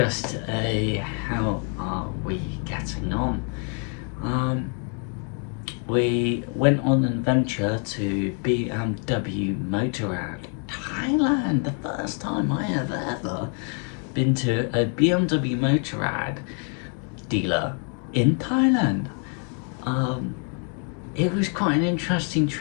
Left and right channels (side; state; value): right; quieter; 39.7 dB